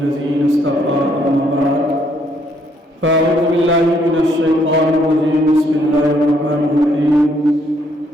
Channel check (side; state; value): both; normal; correlation 0.69